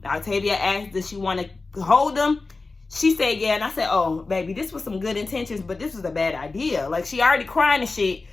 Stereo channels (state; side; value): quieter; right; 3.7 dB